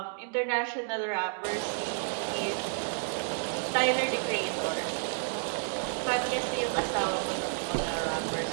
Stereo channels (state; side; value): silent; left; digital silence